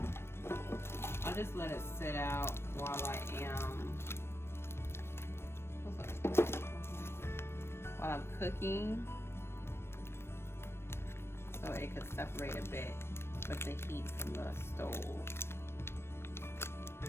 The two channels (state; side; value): late; right; 0.12 ms